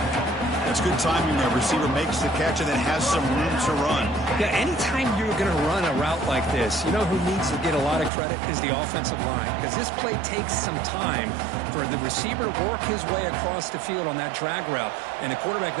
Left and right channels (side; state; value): left; drops out; at 8.1 s